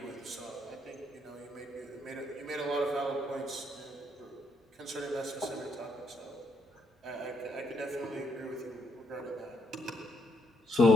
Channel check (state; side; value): normal; both; correlation 0.74